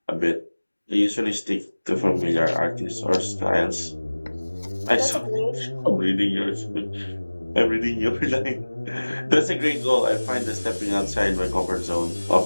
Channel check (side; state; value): both; inverted; correlation -1.00